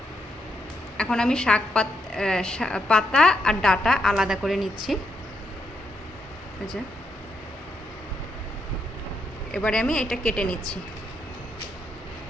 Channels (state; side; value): normal; both; correlation 0.79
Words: এখন আমি পাতা আর ডাঁটা আলাদা করে নিচ্ছি। আচ্ছা, এবারে আমি এটা কেটে নিচ্ছি।